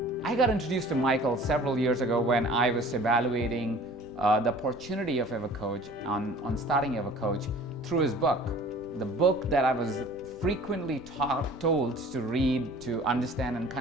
I got introduced to Michael several years ago when I was evaluating the opportunity of Evercoach on starting Evercoach through his book. The book that I was frequently told to read, to understand and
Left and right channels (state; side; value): normal; both; correlation 0.47